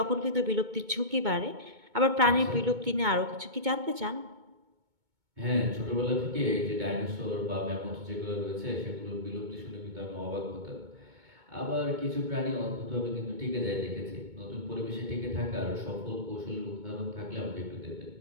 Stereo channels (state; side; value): late; left; 2.2 ms